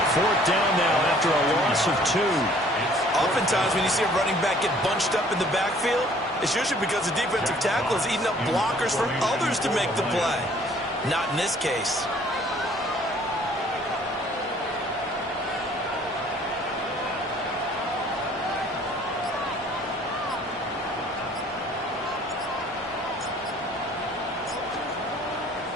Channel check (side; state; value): both; normal; correlation 0.56